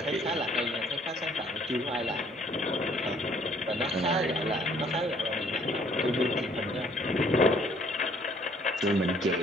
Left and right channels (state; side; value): normal; both; correlation 0.61